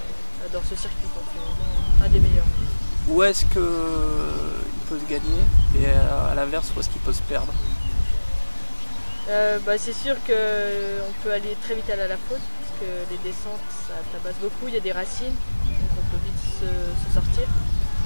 adore ce circuit, c'est vraiment un des meilleurs. Où est-ce qu'il peut se gagner et à l'inverse, où est-ce qu'il peut se perdre? C'est sûr qu'on peut aller très vite à la faute, parce que les descentes ça tabasse beaucoup, il y a des racines, donc on peut vite se sortir.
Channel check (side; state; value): both; inverted; correlation -1.00